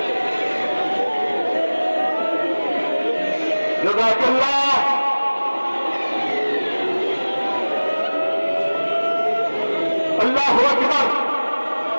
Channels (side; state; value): both; inverted; correlation -1.00